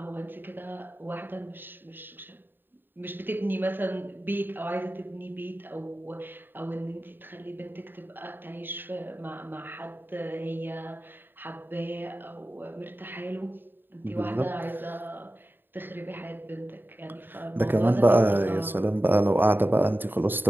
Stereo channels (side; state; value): left; late; 0.095 ms